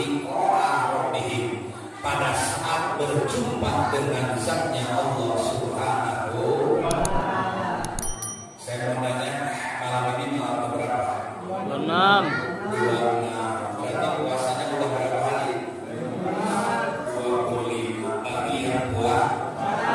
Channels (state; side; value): identical; both; correlation 1.00